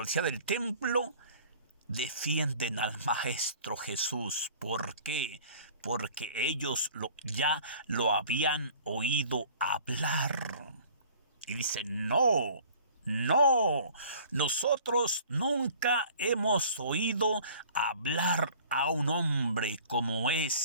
del templo defienden al Maestro Jesús. ¿Por qué? Porque ellos ya lo habían oído hablar. Y dicen, no, nosotros nunca hemos oído hablar a un hombre como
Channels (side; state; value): both; inverted; correlation -0.49